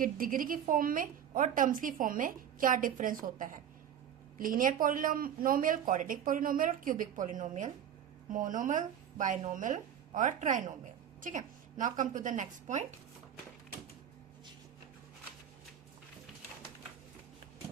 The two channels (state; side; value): quieter; left; 9.4 dB